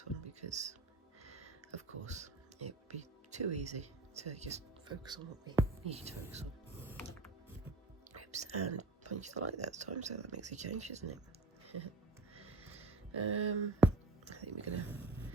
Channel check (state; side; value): quieter; left; 3.2 dB